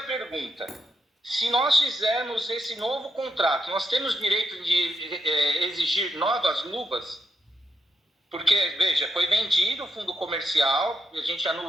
se nós fizermos esse novo contrato, nós temos direito de exigir novas luvas? Porque, veja, foi vendido o fundo comercial, a gente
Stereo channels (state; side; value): normal; both; correlation 0.81